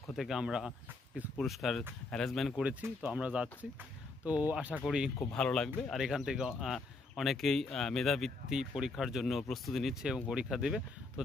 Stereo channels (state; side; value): quieter; right; 3.5 dB